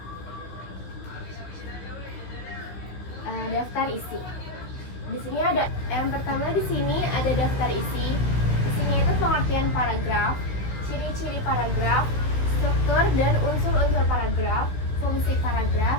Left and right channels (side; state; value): right; late; 16 ms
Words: Daftar isi. Di sini ada yang pertama, di sini ada daftar isi. Di sini itu pengertian paragraf, ciri-ciri paragraf, struktur dan unsur-unsur paragraf, fungsi